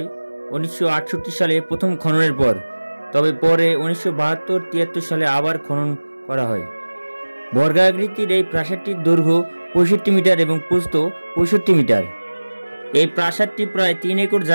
1968 সালে প্রথম খননের পর, তবে পরে 1972-73 সালে আবার খনন করা হয়। বর্গাকৃতির এই প্রাসাদটির দৈর্ঘ্য 65 মিটার এবং প্রস্থ 65 মিটার। এই প্রাসাদটি প্রায় 3 একর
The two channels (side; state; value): both; inverted; correlation -1.00